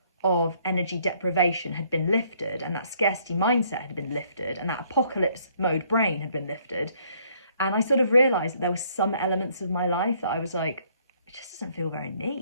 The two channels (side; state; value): both; inverted; correlation -0.65